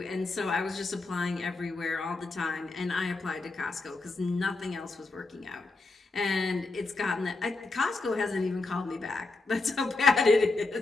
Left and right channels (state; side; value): quieter; right; 3.5 dB